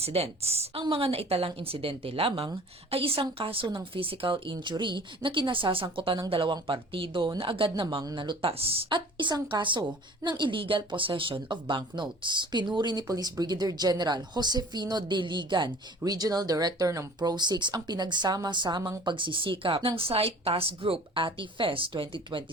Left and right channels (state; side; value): normal; both; correlation 0.46